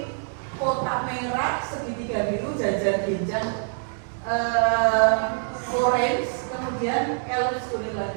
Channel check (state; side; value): silent; left; digital silence